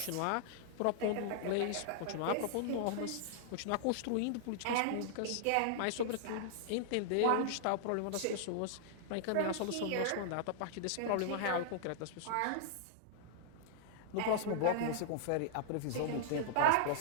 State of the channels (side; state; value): both; different; correlation -0.01